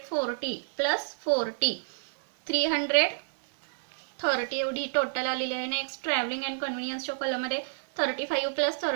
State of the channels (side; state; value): left; silent; digital silence